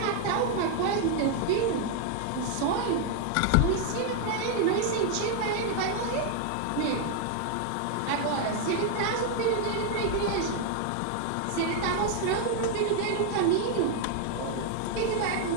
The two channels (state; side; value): different; both; correlation 0.00